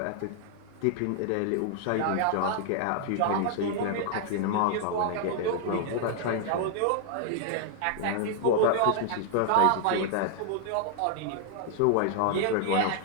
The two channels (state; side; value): different; both; correlation 0.00